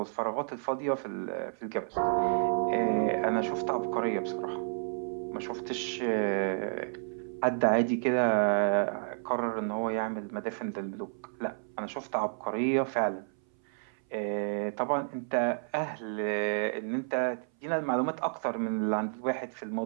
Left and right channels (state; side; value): silent; left; 57 dB below the other